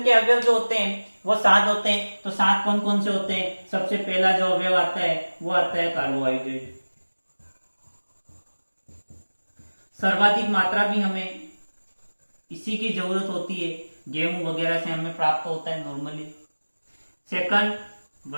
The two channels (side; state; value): both; inverted; correlation -1.00